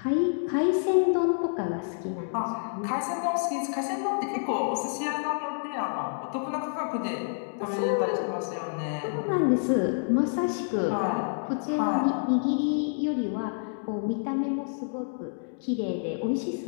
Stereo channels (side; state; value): right; silent; digital silence